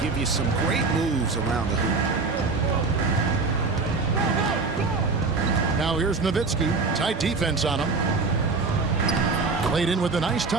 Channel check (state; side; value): quieter; left; 4.1 dB